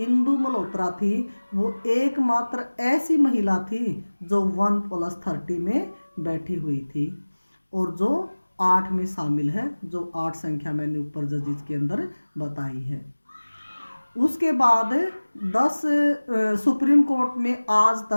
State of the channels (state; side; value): inverted; both; correlation -1.00